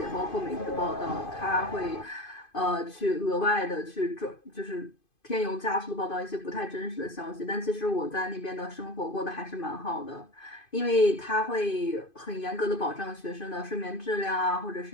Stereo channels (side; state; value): right; late; 2.5 ms